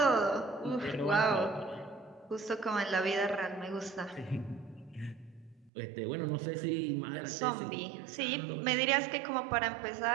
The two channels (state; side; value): drops out; left; at 5.7 s